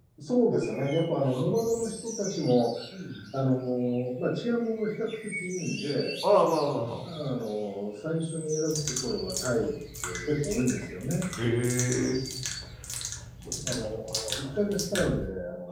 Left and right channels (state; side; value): identical; both; correlation 1.00